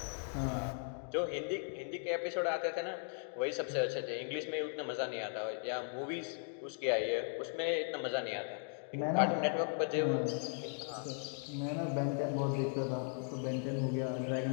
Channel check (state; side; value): silent; right; 53 dB below the other